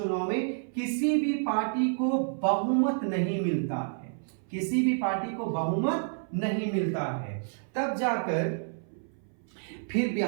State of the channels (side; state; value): left; silent; 57 dB below the other